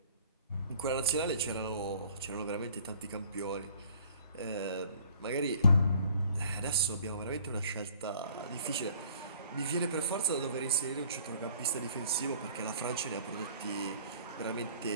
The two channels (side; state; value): both; inverted; correlation -0.54